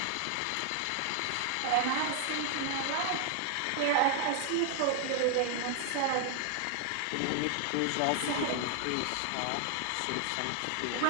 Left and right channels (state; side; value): different; both; correlation 0.00